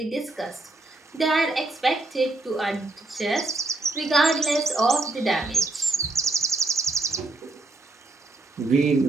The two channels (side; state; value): left; quieter; 3.0 dB